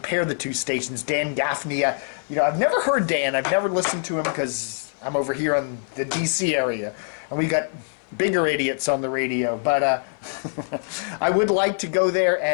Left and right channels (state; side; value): silent; right; 56 dB below the other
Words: the two stations. Dan Gaffney, I've never heard Dan. I've never listened to him because I'm over here on the D.C. area. And we got bigger idiots on the radio. But I would like to go there